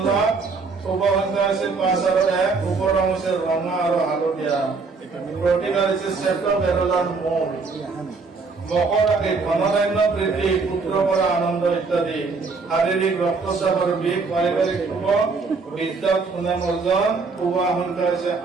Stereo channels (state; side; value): quieter; left; 4.4 dB